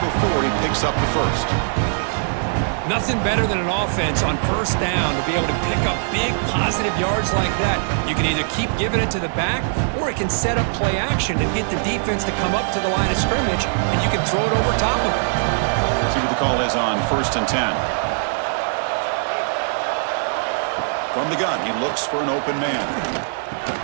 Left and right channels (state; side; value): silent; left; digital silence